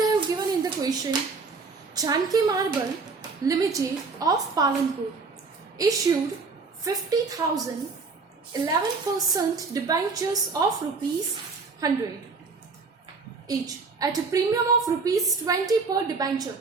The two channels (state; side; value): quieter; left; 4.4 dB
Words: have given in the question, Janki Marble Limited of Palanpur issued 50,000 11% debentures of rupees 100 each at a premium of rupees 20 per debenture.